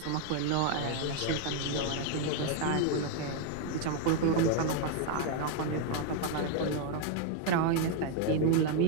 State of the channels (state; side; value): different; both; correlation 0.01